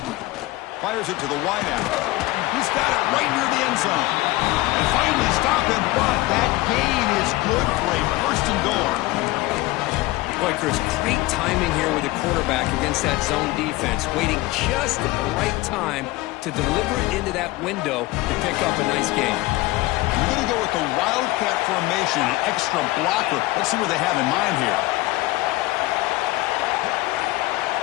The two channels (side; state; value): right; quieter; 19.6 dB